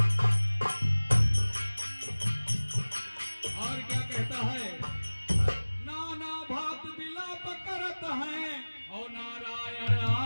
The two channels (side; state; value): both; inverted; correlation -1.00